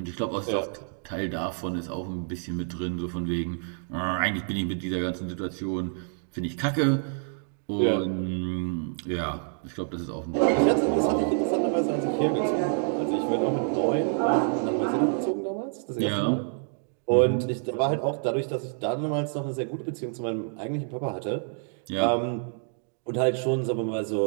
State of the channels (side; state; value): left; silent; 58 dB below the other